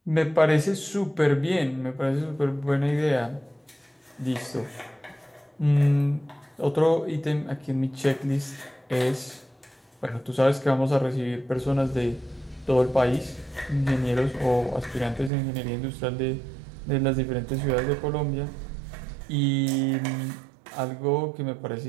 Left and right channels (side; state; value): left; drops out; at 15.3 s